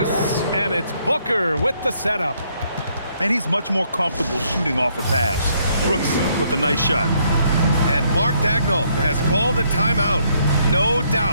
and it's Booker with the setup. And he's much more comfortable shooting off a pass. Brooks with a nice shot. And Mark Daigneault has called a timeout. No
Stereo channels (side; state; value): both; inverted; correlation -0.70